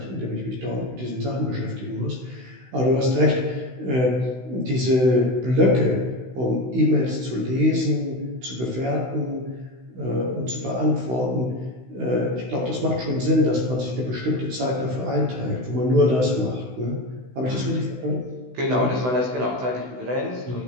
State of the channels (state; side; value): late; left; 16 ms